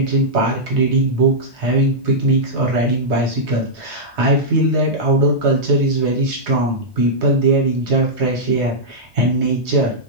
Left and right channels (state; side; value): normal; both; correlation -0.09